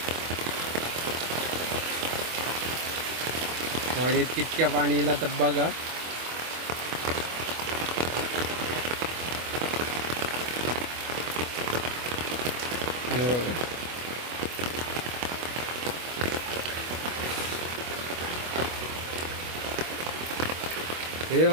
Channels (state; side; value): late; left; 24 ms